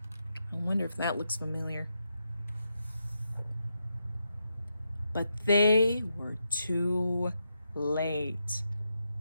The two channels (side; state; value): both; inverted; correlation -0.84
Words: I wonder if that looks familiar. But they were too late.